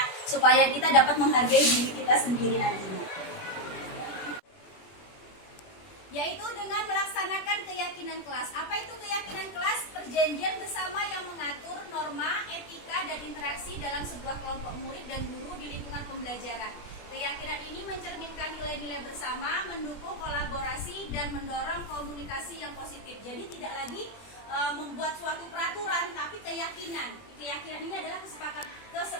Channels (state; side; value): late; right; 21 ms